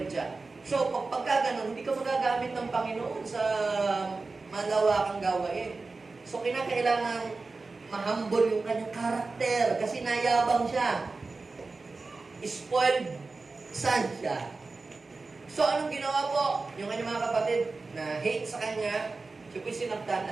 siya. So, pagka ganun, hindi ka magagamit ng Panginoon sa malawakang gawain. So, kinakailangan mahambol yung kanyang karakter kasi nayabang siya. Spoiled son siya. So, anong ginawa po? Yung kanyang mga kapatid na hate sa kanya, siya po'y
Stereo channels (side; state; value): left; quieter; 3.8 dB